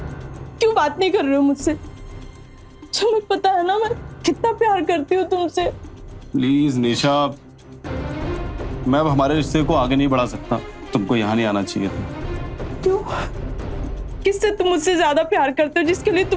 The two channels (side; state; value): both; identical; correlation 1.00